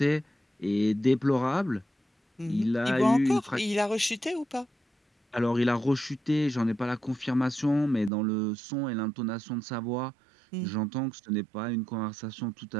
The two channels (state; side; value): drops out; left; at 8.1 s